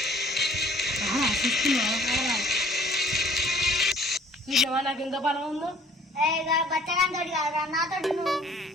నాకు ఎంత బలం ఉందో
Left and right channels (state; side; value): normal; both; correlation 0.56